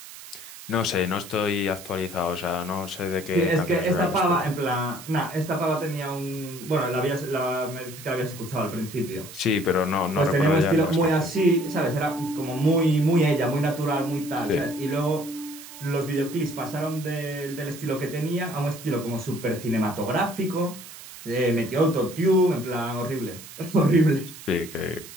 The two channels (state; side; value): noise; right; hiss, 15 dB below the sound